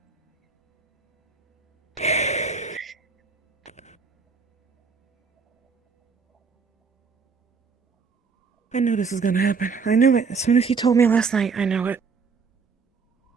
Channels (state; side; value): quieter; left; 5.2 dB